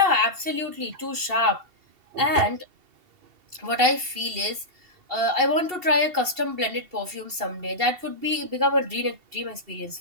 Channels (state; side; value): late; left; 2.7 ms